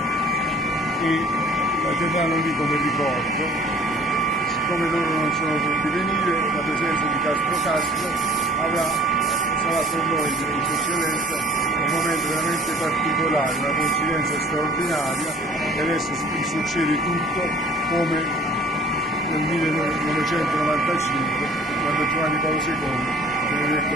e la terranno lì come ricordo. Siccome loro non sono potuti venire, la presenza di Castro sarà per noi, di Sua Eccellenza, un momento veramente particolare, una coincidenza straordinaria, e adesso succede tutto come nel 1995, quando Giovanni Paolo II viene detto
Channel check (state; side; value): normal; both; correlation 0.51